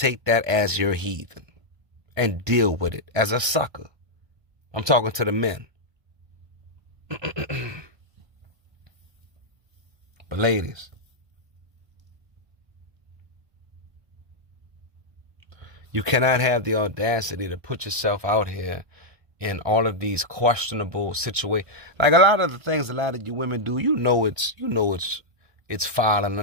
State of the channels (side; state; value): left; late; 1.5 ms